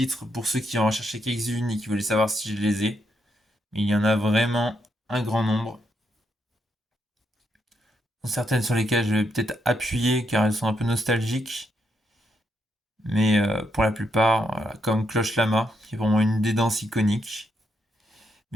pour ceux qui en recherchaient quelques-unes et qui voulaient savoir si je les ai. Mais il y en a vraiment un grand nombre. Certaines sur lesquelles je vais peut-être appuyer car elles sont un peu nostalgiques. Mais pour la plupart, voilà, comme Cloche Lama, qui est pour moi une des danses iconiques.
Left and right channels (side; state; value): both; normal; correlation 0.79